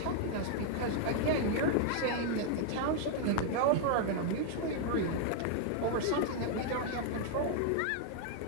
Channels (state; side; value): different; both; correlation 0.00